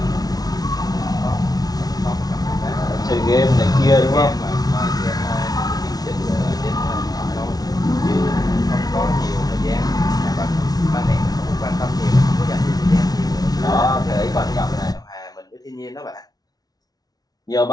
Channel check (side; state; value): right; late; 0.19 ms